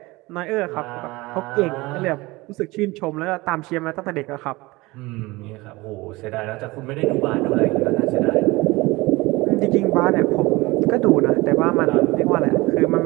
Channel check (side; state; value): left; quieter; 21.8 dB